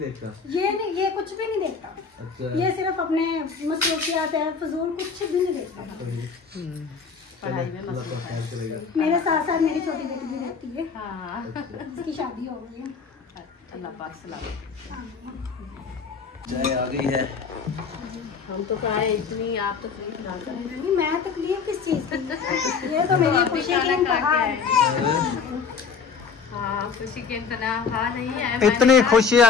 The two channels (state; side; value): quieter; right; 5.6 dB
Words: ये नहीं, ये कुछ भी नहीं देखता। अच्छा। ये सिर्फ अपने मसरूफियात है, फजूल कुछ भी नहीं देखता। मेरे साथ साथ मेरी छोटी बेटी भी रहती है। हाँ। उसकी शादी हो गई है। अल्लाह पाक सलामत। चाय आ गई है। हम तो खाए इतनी, आप तो तकलीफ ना करें। नहीं मैं तकलीफ किस चीज की? ये तो मेरी खुशी की इंतहा है। हाँ खुशी के इंतहा नहीं है। इतनी